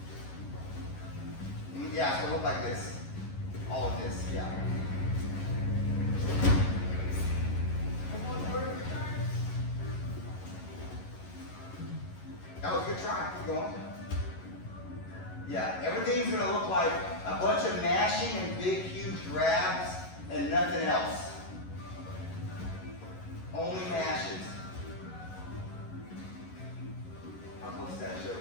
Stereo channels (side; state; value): right; late; 11 ms